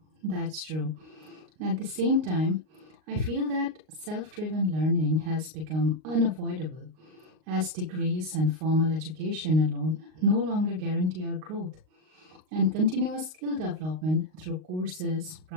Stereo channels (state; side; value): late; left; 38 ms